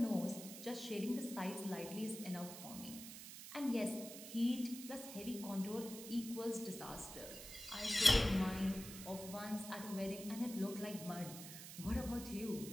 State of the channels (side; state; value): right; noise; hiss, 11 dB below the sound